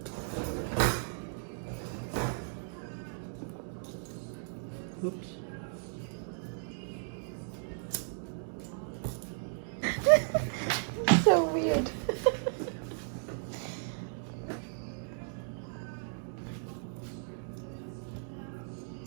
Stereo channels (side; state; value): left; silent; digital silence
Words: Oops. So weird.